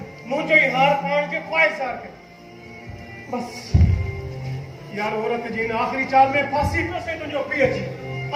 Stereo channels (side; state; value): both; identical; correlation 1.00